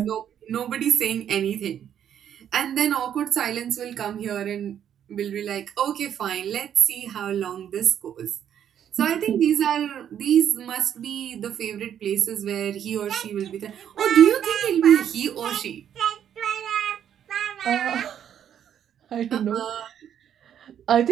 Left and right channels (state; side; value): quieter; left; 9.5 dB